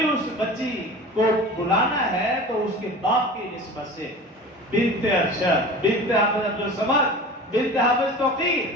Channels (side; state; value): both; normal; correlation 0.36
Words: اس بچی کو بلانا ہے تو اس کے باپ کی نسبت سے بنت ارشد، بنت حافظ عبدالصمد، بنت حافظ توقیر،